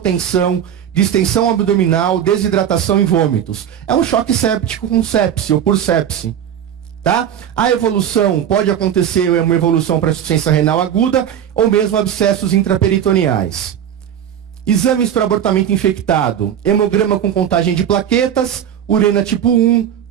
distensão abdominal, desidratação e vômitos. É um choque séptico com sepse ou por sepse. Tá? A evolução pode acontecer, uma evolução para insuficiência renal aguda ou mesmo abscessos intraperitoneais. Exames para abortamento infectado: hemograma com contagem de plaquetas, urina tipo 1,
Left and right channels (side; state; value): left; quieter; 9.5 dB